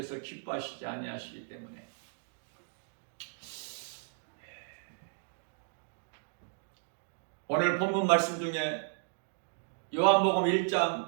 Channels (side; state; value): left; silent; digital silence